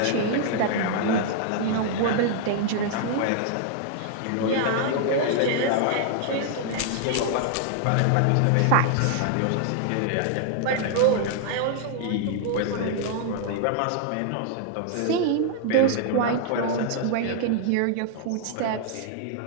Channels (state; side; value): different; both; correlation 0.00